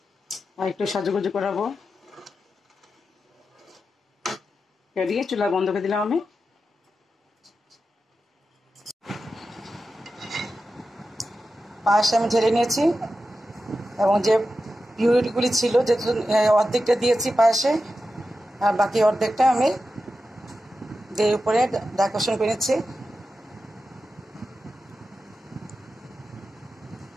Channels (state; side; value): normal; both; correlation 0.91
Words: আর একটু সাজুগুজু করাবো। দিয়ে চুলা বন্ধ করে দিলাম আমি। পায়েস আমি ঢেলে নিয়েছি, এবং যে পিউরিগুলি ছিল, যেহেতু অর্ধেকটা দিয়েছি পায়েসে, আর বাকি অর্ধেকটা আমি দিয়ে উপরে ডেকোরেশন করে নিচ্ছি।